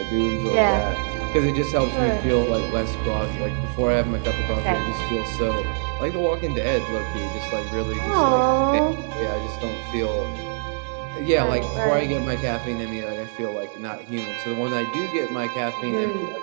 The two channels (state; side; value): silent; left; 63 dB below the other